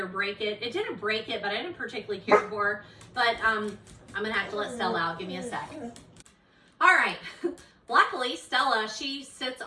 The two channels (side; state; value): both; identical; correlation 1.00